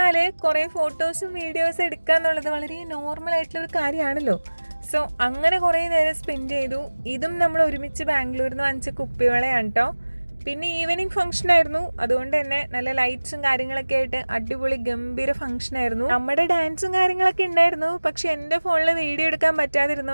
കുറേ ഫോട്ടോസും വീഡിയോസും എടുക്കുക എന്നുള്ളത് വളരെ നോർമൽ ആയിട്ടുള്ളൊരു കാര്യമാണല്ലോ. സോ അങ്ങനെ കുറേ നേരം സ്പെൻഡ് ചെയ്തു. ഇതും നമ്മൾ ഒരുമിച്ച് ബാംഗ്ലൂരിൽ നിന്ന് വാങ്ങിച്ച കുപ്പിവളയാണ് കേട്ടോ. പിന്നെ ഈവനിങ് ഫംഗ്ഷൻ ആയിരുന്നു. അതുകൊണ്ട് തന്നെ നല്ല ലൈറ്റ്സും കാര്യങ്ങളൊക്കെ ആയിട്ട് അടിപൊളി ഗംഭീര ഫംഗ്ഷൻ ആയിരുന്നു. നമ്മുടെ ഡാൻസും കാര്യങ്ങളൊക്കെ ഉണ്ടായിരുന്നു. പക്ഷെ എൻ്റെ ഫോണിൽ വീഡിയോ എടുക്കാൻ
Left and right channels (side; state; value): both; inverted; correlation -1.00